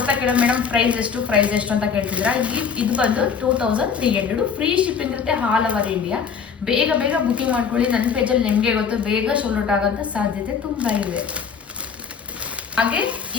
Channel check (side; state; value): right; quieter; 6.5 dB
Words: ಕೇಳೋ ಮೇಡಮ್ ಪ್ರೈಸ್ ಎಷ್ಟು ಅಂತ ಕೇಳ್ತಿದ್ದೀರಾ. ಇದು ಬಂದು 2300. ಫ್ರೀ ಶಿಪ್ಪಿಂಗ್ ಇರುತ್ತೆ ಆಲ್ ಓವರ್ ಇಂಡಿಯಾ. ಬೇಗ ಬುಕಿಂಗ್ ಮಾಡ್ಕೊಳ್ಳಿ. ನನ್ನ ಪೇಜಲ್ಲಿ ನಿಮಗೆ ಗೊತ್ತು, ಬೇಗ ಸೋಲ್ಡ್ ಔಟ್ ಆಗೋಂಥ ಸಾಧ್ಯತೆ ತುಂಬಾ ಇದೆ. ಹಾಗೆ